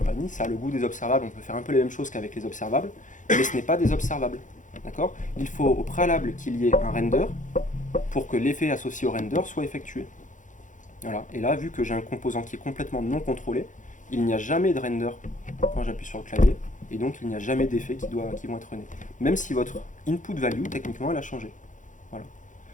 Ça a le goût des observables. On peut faire un peu les mêmes choses qu'avec les observables. Mais ce n'est pas des observables. D'accord? Il faut au préalable qu'il y ait un render pour que l'effet associé au render soit effectué. Voilà. Et là, vu que j'ai un composant qui est complètement non contrôlé, il n'y a jamais de render quand j'appuie sur le clavier. Et donc, il n'y a jamais d'effets qui vont être nés. Même si votre input value, techniquement, elle a changé. Voilà.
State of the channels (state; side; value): late; right; 0.37 ms